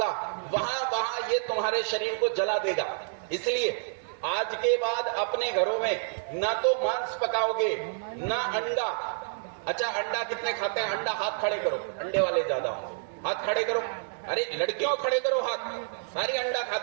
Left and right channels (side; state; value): left; silent; digital silence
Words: वहां वहां ये तुम्हारे शरीर को जला देगा। इसलिए आज के बाद अपने घरों में ना तो मांस पकाओगे ना अंडा। अच्छा, अंडा कितने खाते हैं? अंडा हाथ खड़े करो, अंडे वाले ज्यादा होंगे, हाथ खड़े करो। अरे लड़कियों खड़े करो हाथ, सारी अंडा